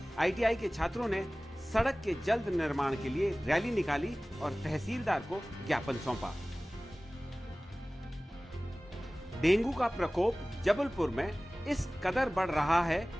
आईटीआई के छात्रों ने सड़क के जल्द निर्माण के लिए रैली निकाली और तहसीलदार को ज्ञापन सौंपा। डेंगू का प्रकोप जबलपुर में इस कदर बढ़ रहा है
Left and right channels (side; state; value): both; normal; correlation 0.98